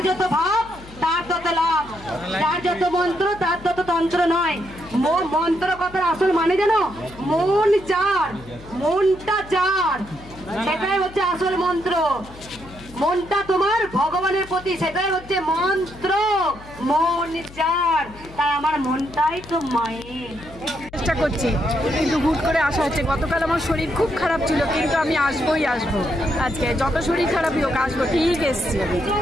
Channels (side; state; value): left; noise; hum, 19 dB below the sound